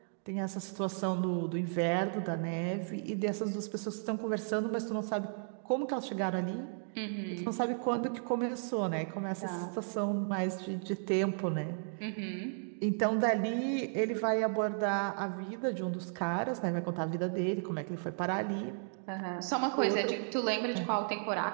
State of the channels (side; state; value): left; silent; digital silence